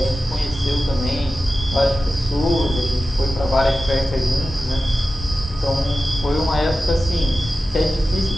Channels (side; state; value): both; normal; correlation 0.93